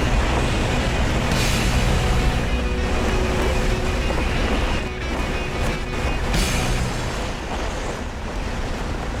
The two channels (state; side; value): identical; both; correlation 1.00